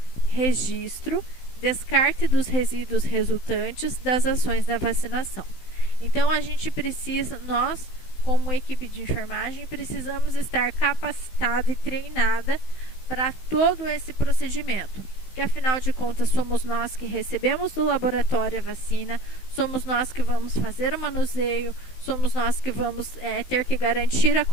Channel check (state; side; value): late; right; 16 ms